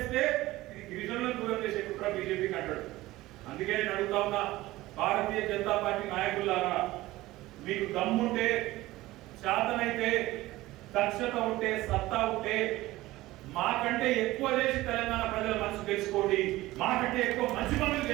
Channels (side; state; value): left; quieter; 17.8 dB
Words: ఇది గిరిజనులను దూరం చేసే కుట్ర బీజేపీకి అంటాడు. అందుకే నేను అడుగుతా ఉన్నా, భారతీయ జనతా పార్టీ నాయకులారా, మీకు దమ్ముంటే, శాతనైతే, దక్షత ఉంటే, సత్తా ఉంటే మాకంటే ఎక్కువ చేసి తెలంగాణ ప్రజల మనసు తెలుసుకోండి, మాకంటే ఎక్కువ మంచి పనులు